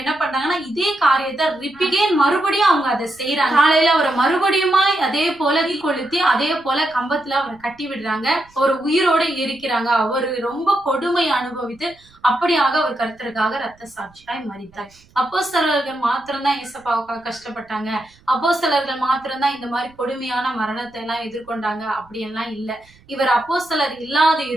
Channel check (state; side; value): noise; right; rumble, 29 dB below the sound